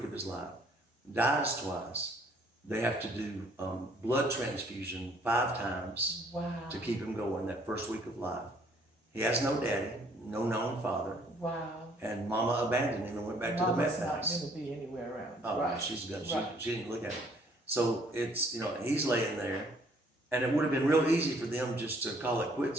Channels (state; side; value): normal; both; correlation 0.62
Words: of his life, dies twice. They have to do blood transfusion 5 times to keep him going that first week of life. He has no daddy, no known father. Wow. And Mama abandoned him and went back to the meth house. Mama's not going to be anywhere around. Oh, right. She's good. She didn't look at him. So it's, he's laying there, and it would have been real easy for them just to call it